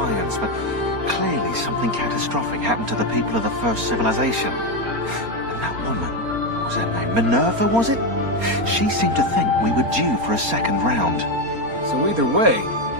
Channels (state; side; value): late; left; 4.3 ms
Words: but clearly something catastrophic happened to the people of the first civilization. And that woman, what was her name? Minerva, was it? She seemed to think we were due for a second round. So either way,